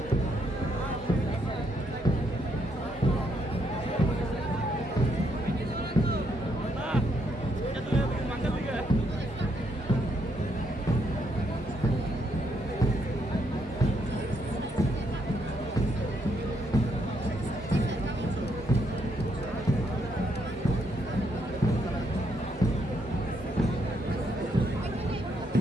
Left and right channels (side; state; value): both; normal; correlation 0.75